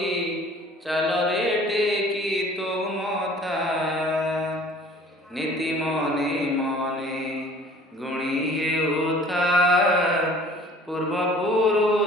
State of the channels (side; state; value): both; normal; correlation 0.50